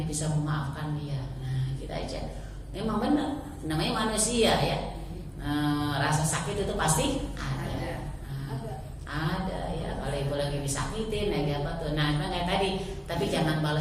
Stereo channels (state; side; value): identical; both; correlation 1.00